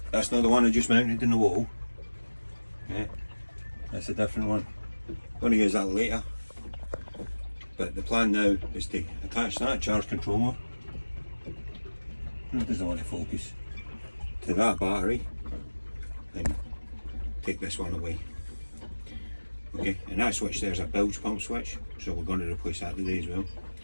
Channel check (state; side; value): inverted; both; correlation -1.00